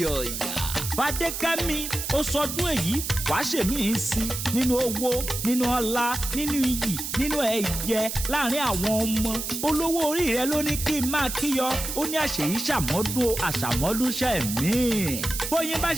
Fadékẹ́mi ó sọdún èyí wàá ṣèmí ń sí nínú owó, nínú ọlá, nínú iyì, nínú ẹ̀yẹ láàrin àwọn ọmọ. Olówó orí rẹ ló ní kí n máa kíyọ, ó ní àṣeyí ṣàmọ́dún àṣàmọ́dúnṣẹ́ mi. Bóyin bá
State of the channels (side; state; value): right; noise; hiss, 5 dB below the sound